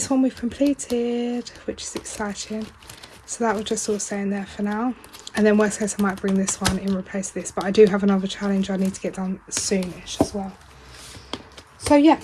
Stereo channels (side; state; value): both; identical; correlation 1.00